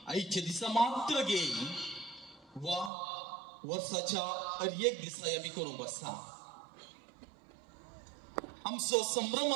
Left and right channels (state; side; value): drops out; left; at 2.9 s